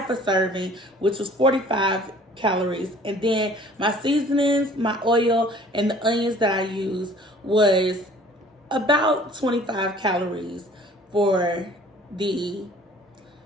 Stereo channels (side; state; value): both; normal; correlation 0.52